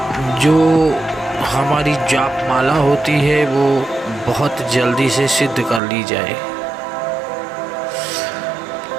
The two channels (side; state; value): left; drops out; at 5.8 s